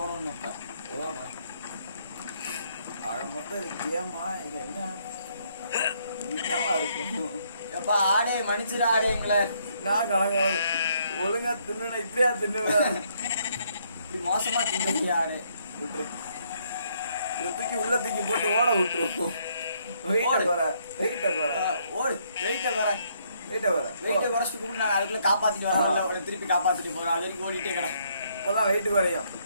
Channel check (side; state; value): both; inverted; correlation -0.70